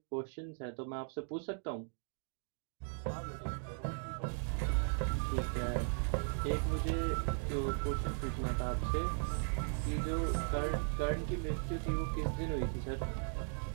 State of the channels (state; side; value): silent; left; 53 dB below the other